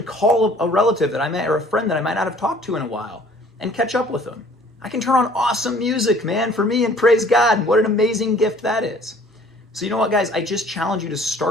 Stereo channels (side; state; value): both; normal; correlation 0.54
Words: call a relative that I met or a friend that I might not have talked to in a while and catch up with them. I can turn on awesome music, man, for me, and praise God. And what an amazing gift that is. So you know what, guys? I just challenge you to